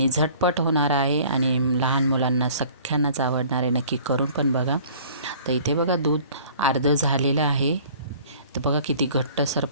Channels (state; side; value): inverted; both; correlation -0.51